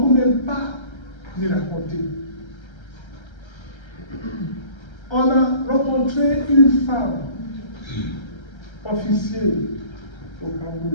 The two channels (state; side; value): late; right; 1.3 ms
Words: même pas les raconter. On a rencontré une femme officielle au